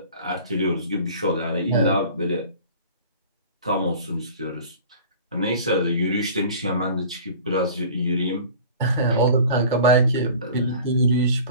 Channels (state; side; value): inverted; both; correlation -0.43